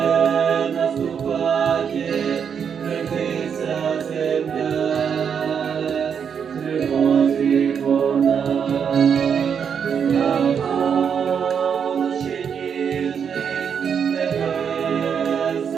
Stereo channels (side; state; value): left; quieter; 7.2 dB